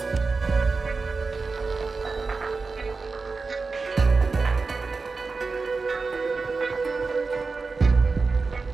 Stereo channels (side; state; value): left; quieter; 4.3 dB